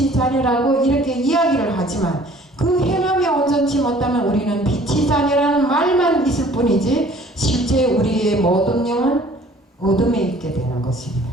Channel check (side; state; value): both; normal; correlation 0.53